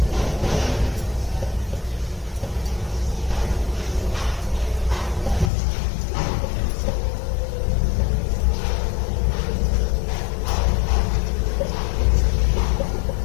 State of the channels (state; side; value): drops out; right; at 5.5 s